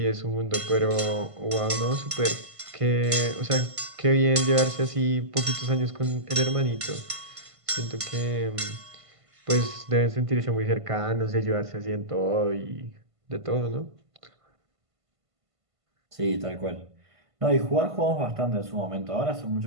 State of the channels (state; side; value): late; left; 1.5 ms